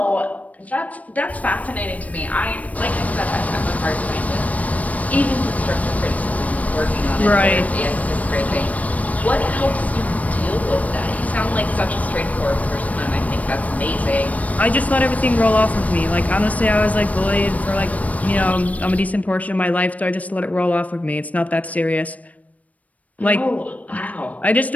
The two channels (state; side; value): late; right; 0.069 ms